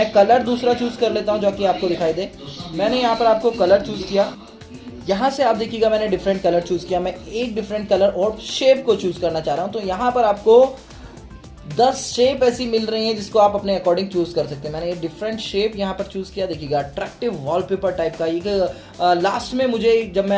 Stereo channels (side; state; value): both; identical; correlation 1.00